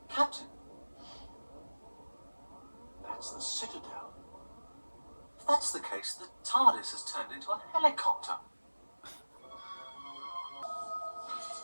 Captain. That's the Citadel. If that's the case, the TARDIS has turned into a helicopter.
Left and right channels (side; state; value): both; inverted; correlation -1.00